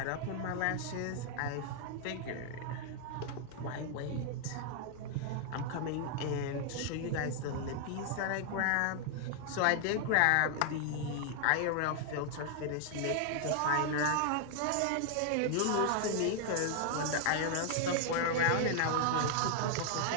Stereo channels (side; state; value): both; different; correlation 0.00